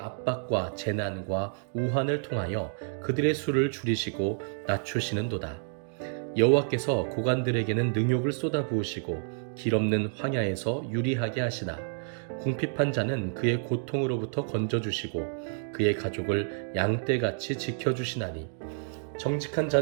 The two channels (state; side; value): silent; left; 58 dB below the other